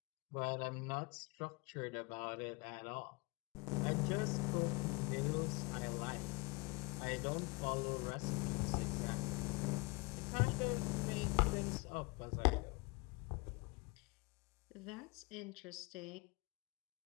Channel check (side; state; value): right; quieter; 28.3 dB